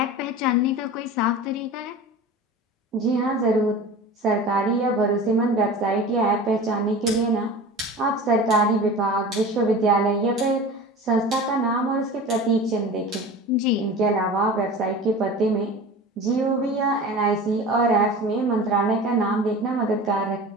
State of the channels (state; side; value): normal; both; correlation 0.35